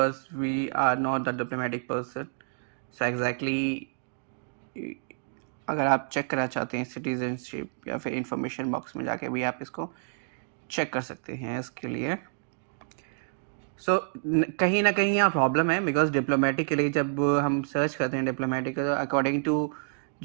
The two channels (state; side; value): silent; left; digital silence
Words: we are not the diplomatic person, so exactly अगर आप चेक करना चाहते हैं सिटीजनशिप, या फिर इंफॉर्मेशन बॉक्स में जाके भी आप इसको चेक कर सकते हैं इसके लिए. सो कहीं ना कहीं यहाँ प्रॉब्लम है, बिकॉज डिप्लोमेटिक के लिए जब हम सर्च करते हैं डिप्लोमेटिक, तो according to